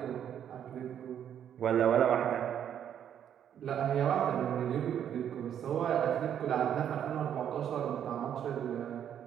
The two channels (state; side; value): quieter; left; 9.4 dB